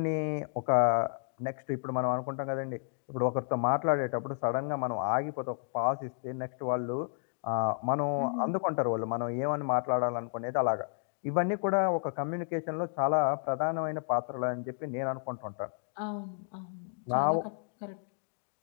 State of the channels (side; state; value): right; silent; digital silence